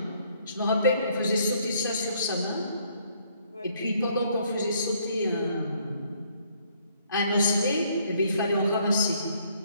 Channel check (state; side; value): inverted; both; correlation -0.66